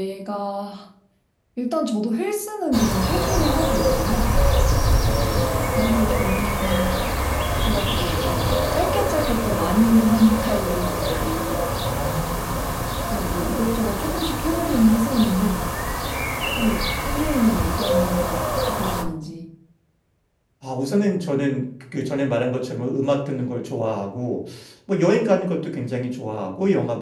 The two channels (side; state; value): both; identical; correlation 1.00